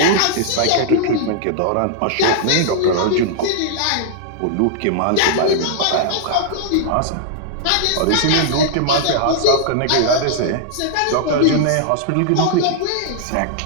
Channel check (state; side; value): different; both; correlation -0.01